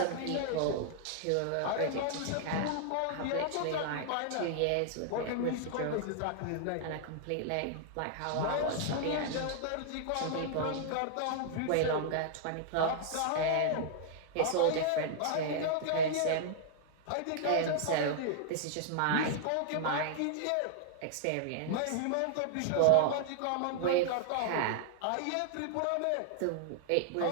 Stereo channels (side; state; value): both; different; correlation -0.01